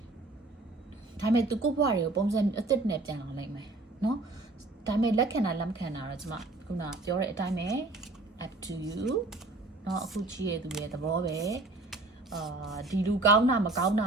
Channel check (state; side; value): quieter; left; 3.1 dB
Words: ဒါပေမဲ့သူကိုဘွားတွေကိုပုံစံအသစ်နဲ့ပြန်လာနိုင်မယ်နော်ဒါပေမဲ့လက်ခံတာလက်မခံတာတော့ကျမခုနပြောတဲ့အတိုင်းပဲ up to you နော်အခုချီးရသူရဲ့သဘောပဲဒီလူကောင်းတာမကောင်းတ